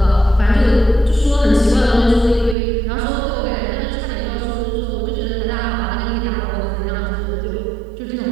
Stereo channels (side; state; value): left; drops out; at 2.6 s